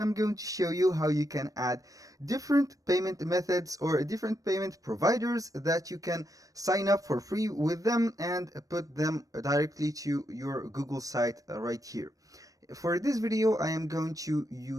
going to show you how you can add different payment methods or different payment providers that you can sign up for free with them and put them directly to your Google site right here. For this video I am going to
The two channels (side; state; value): left; late; 0.16 ms